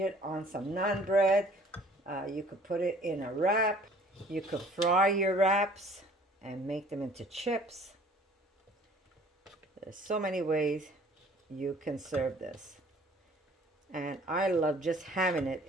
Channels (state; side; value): normal; both; correlation 0.53